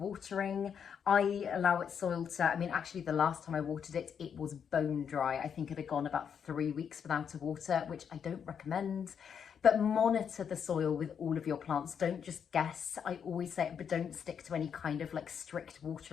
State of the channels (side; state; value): right; quieter; 7.5 dB